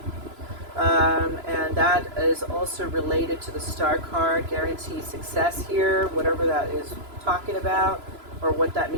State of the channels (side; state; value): left; late; 3.0 ms